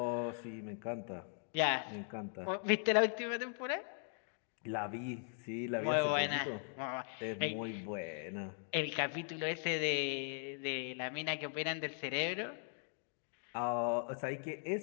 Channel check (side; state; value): right; silent; 52 dB below the other